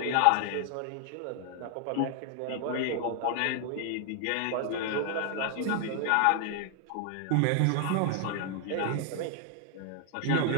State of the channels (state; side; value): different; both; correlation 0.00